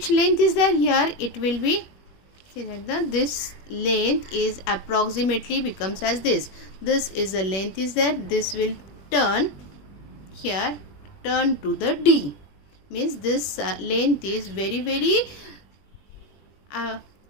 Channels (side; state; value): right; late; 21 ms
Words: length is there here? It will be, see that this length is approximately becomes as this. This is the length is there. This will turn here, turn to the D. Means this length is very